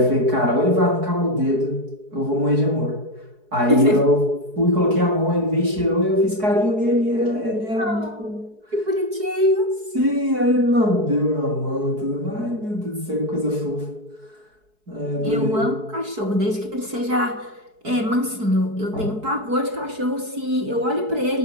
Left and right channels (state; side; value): late; left; 4.7 ms